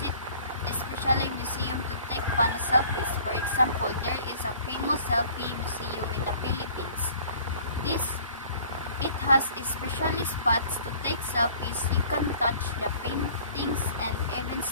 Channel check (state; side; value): inverted; both; correlation -0.52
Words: especially museum to take fun selfies. For example, there is a famous selfie museum in the Philippines. It has especially spots to take selfies. You can touch the paintings and even